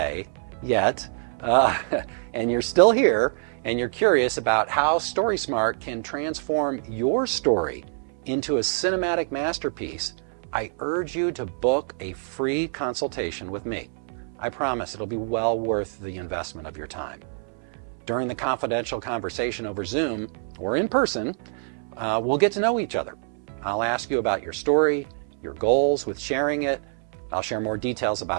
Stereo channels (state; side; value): silent; left; 61 dB below the other